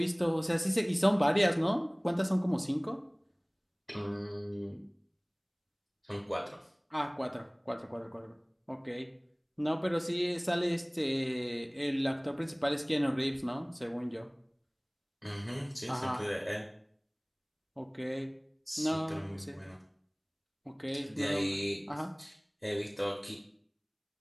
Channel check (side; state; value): both; identical; correlation 1.00